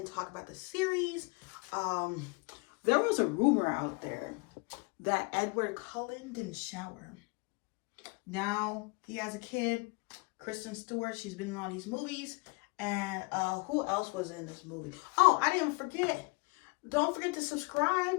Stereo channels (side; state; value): right; quieter; 28.8 dB